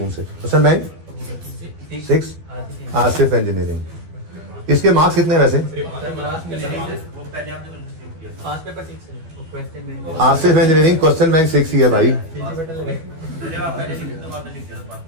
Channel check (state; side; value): late; left; 12 ms